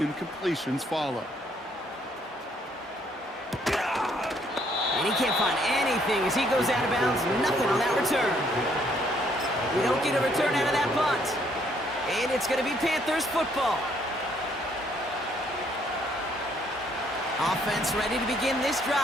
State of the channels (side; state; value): both; normal; correlation 0.67